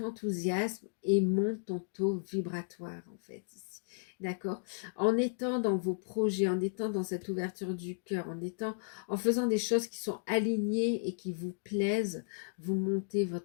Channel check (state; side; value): silent; right; digital silence